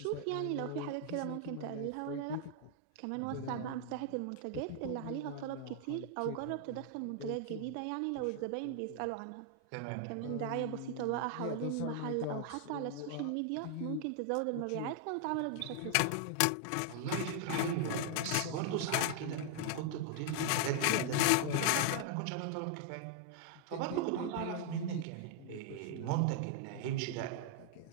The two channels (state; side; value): different; both; correlation 0.00